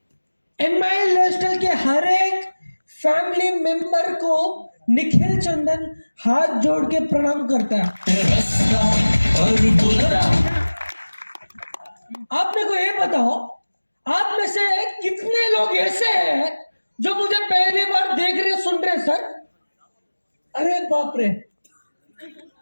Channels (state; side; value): inverted; both; correlation -1.00